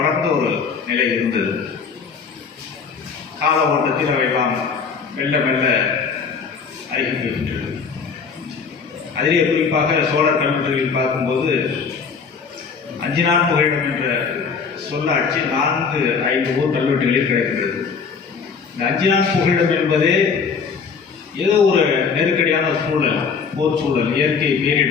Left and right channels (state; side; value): quieter; right; 5.7 dB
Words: ஒரு நிலை இருந்தது. கால ஓட்டத்தில் அவையெல்லாம் மெல்ல மெல்ல அறிவிக்கின்றது. அதிலே குறிப்பாக சோழர் கல்வெட்டுகளில் பார்க்கும்போது 5 நாள் புகையிடம் என்ற சொல்லாட்சி 4-5 ஊர் கல்வெட்டுகளில் கிடைக்கின்றது. இந்த 5 நாள் புகையிடம் என்பதே ஏதோ ஒரு நெருக்கடியான சூழல், போர் சூழல், இயற்கை